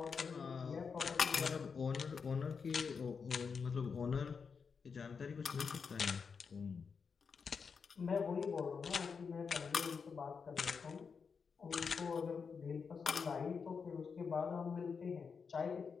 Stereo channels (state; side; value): quieter; right; 5.7 dB